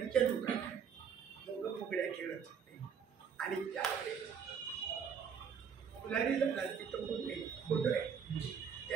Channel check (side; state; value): left; quieter; 7.1 dB